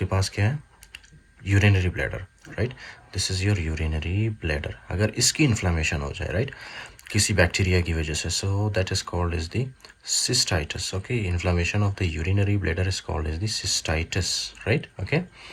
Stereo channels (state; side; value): identical; both; correlation 1.00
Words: पास क्या है? Urinary bladder, right? This is your urinary bladder. अगर इसकी इन्फ्लामेशन हो जाए, राइट, किसी बैक्टीरिया की वजह से, so that is called is the cystitis. Okay, inflammation of the urinary bladder is called is the cystitis, right? Okay,